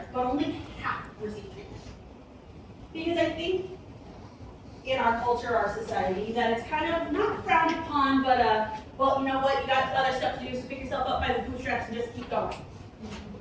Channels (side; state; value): both; identical; correlation 1.00